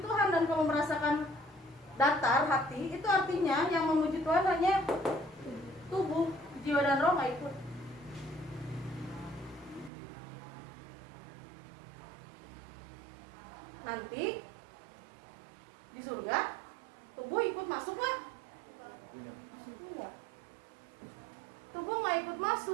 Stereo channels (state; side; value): drops out; left; at 9.9 s